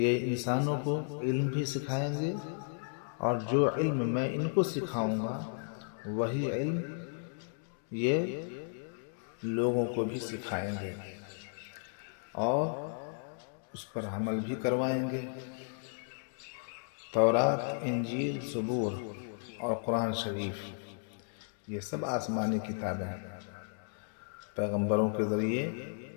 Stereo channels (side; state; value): right; silent; digital silence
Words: انسانوں کو علم بھی سکھائیں گے، اور جو علم میں ان کو سکھاؤں گا وہی علم یہ لوگوں کو بھی سکھائیں گے اور اس پر عمل بھی کروائیں گے۔ تورات، انجیل، زبور اور قرآن شریف یہ سب آسمانی کتابیں پیغمبروں کے ذریعے